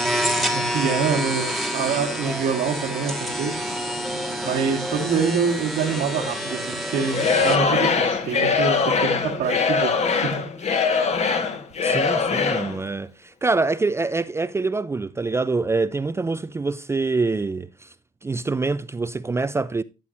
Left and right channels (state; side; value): normal; both; correlation 0.45